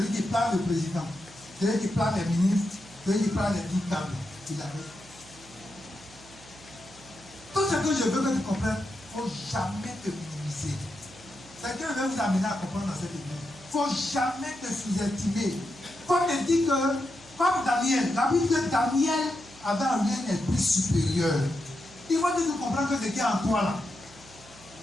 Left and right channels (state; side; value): noise; right; hum, 23 dB below the sound